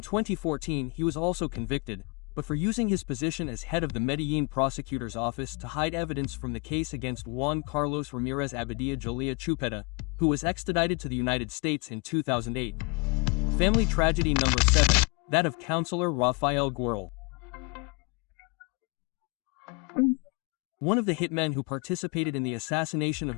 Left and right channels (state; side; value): quieter; right; 30.7 dB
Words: he was also convicted, but for using his position as head of the Medellín prosecutor's office to hide evidence from the case against Juan Carlos Ramirez Abadía Julia Chupeta, who was extradited to the United States in 2008. Family tragedy number 7, that of Counselor Rafael Guerrero. One of the hitmen who participated in the assassination of